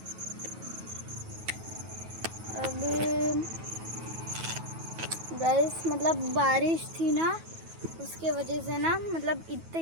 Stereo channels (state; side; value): late; left; 9.2 ms